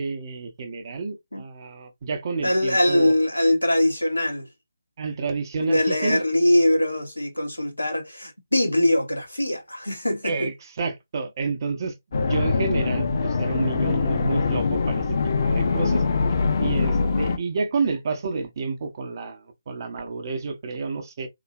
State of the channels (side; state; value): both; inverted; correlation -0.89